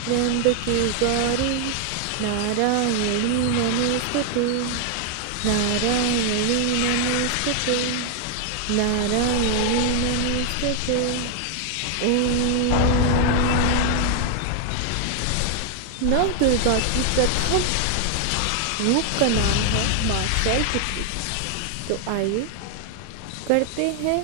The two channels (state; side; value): different; both; correlation 0.00